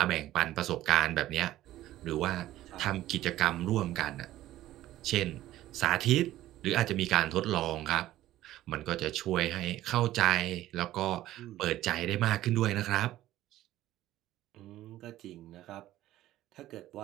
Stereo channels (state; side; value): quieter; left; 14.5 dB